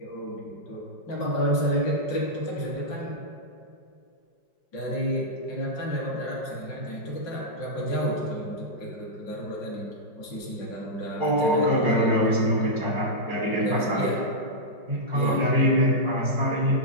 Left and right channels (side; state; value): right; late; 5.5 ms